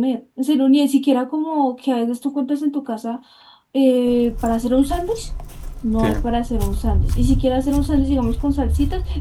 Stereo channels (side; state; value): both; identical; correlation 1.00